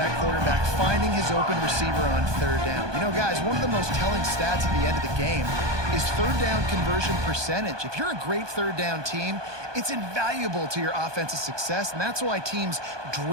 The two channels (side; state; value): left; late; 1.2 ms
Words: quarterback, finding his open receiver on third down. You know, guys, one of the most telling stats at the end of the game is third down conversion percentage. If you're a great third down team, it's invaluable to your offensive success, and that's why teams